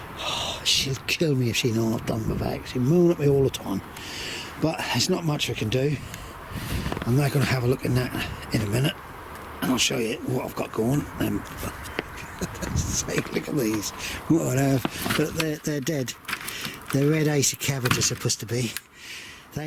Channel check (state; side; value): identical; both; correlation 1.00